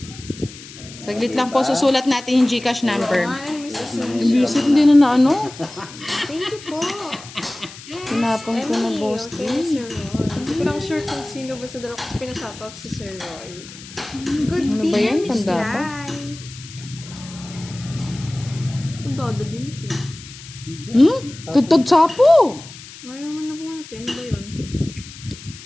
Saglit lang po, susulat natin yung Gcash number. Ay, Miss Susan. Visit hindi na Thank you po. Tinapang ko na Emily, Boss D. okay, Sir Roy. Hindi ko lang sure kung sino ba sa dalawa kasi pinashoutout sa Sir Roy. Good Ano ba yan? Miss Tanda ba? Lai. Ang dodo din ito. Tutod sapo. Mayroon man na po natin. Ano ba yun?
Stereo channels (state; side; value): noise; left; hiss, 16 dB below the sound